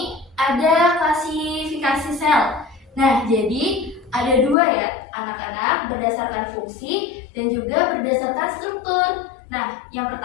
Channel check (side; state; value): right; drops out; at 4.5 s